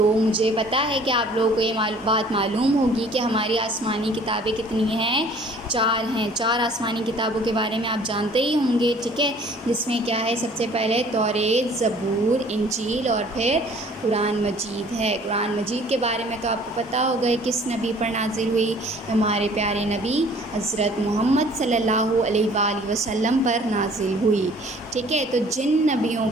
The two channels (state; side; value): normal; both; correlation 0.53